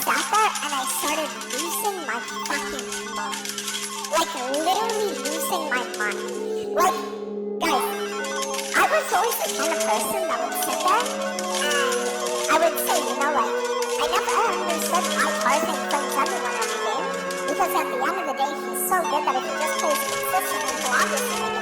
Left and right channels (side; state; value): both; identical; correlation 1.00